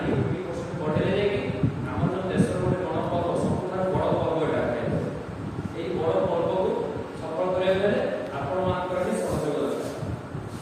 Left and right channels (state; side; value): identical; both; correlation 1.00